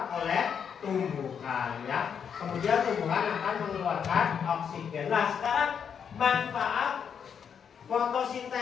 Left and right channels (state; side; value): quieter; right; 7.4 dB